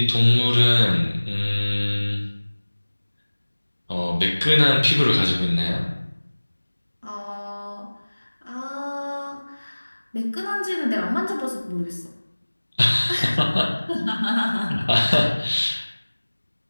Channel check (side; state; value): both; inverted; correlation -1.00